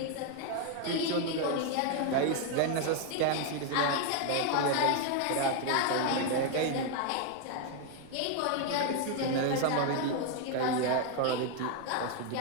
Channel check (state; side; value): different; both; correlation 0.00